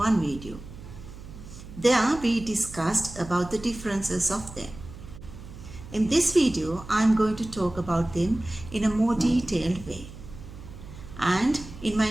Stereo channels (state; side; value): noise; right; hum, 15 dB below the sound